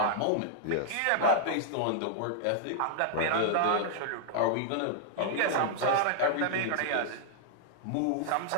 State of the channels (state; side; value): different; both; correlation -0.01